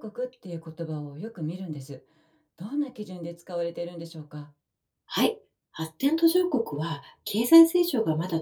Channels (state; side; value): identical; both; correlation 1.00